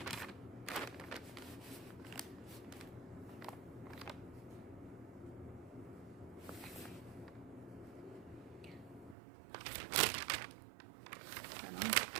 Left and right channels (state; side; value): drops out; left; at 9.2 s